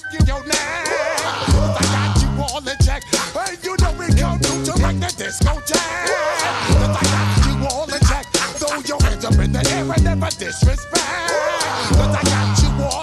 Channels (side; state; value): both; identical; correlation 1.00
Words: your neck. I got you all in check. Hey, you know we come through to wreck the discotheque. I got you all in check. Throw your hands up in the air and never disrespect. I got you